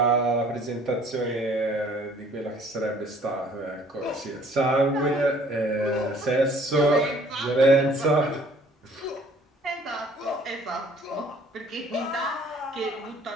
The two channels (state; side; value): normal; both; correlation 0.56